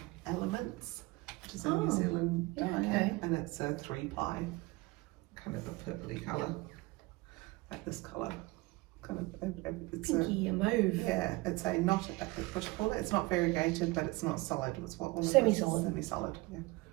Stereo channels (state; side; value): quieter; left; 22.2 dB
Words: Elements, which is a New Zealand dye, okay. and it's a 3-ply. Kind of a purpley colour, like this colour. Kind of, it's Pinky mauve. yeah, it's a not, what do you call it? It's not variegated, but it's not solid. It's what one of Semi-solid. Semi-solid, yeah.